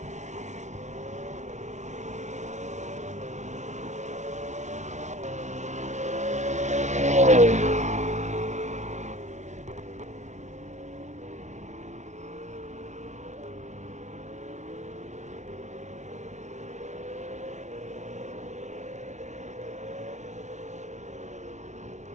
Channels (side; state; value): left; late; 0.34 ms